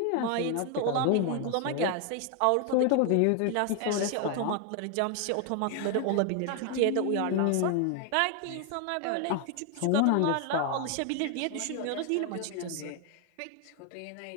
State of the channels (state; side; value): different; both; correlation 0.01